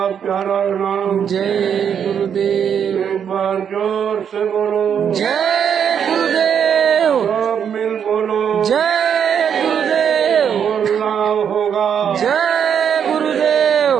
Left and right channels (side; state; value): left; quieter; 8.0 dB